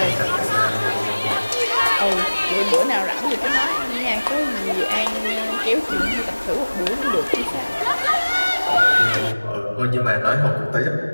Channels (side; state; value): both; inverted; correlation -1.00